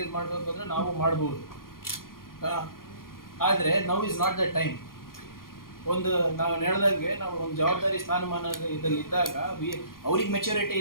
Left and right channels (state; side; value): late; right; 0.91 ms